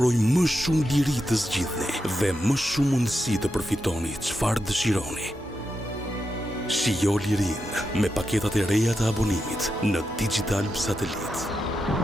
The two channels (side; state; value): both; normal; correlation 0.87